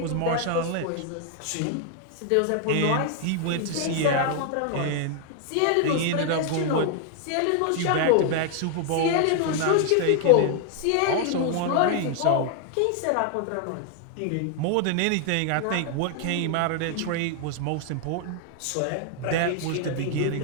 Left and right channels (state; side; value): different; both; correlation 0.00